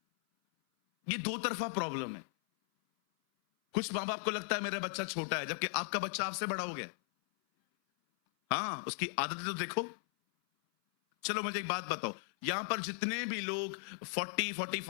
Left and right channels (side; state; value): right; silent; 53 dB below the other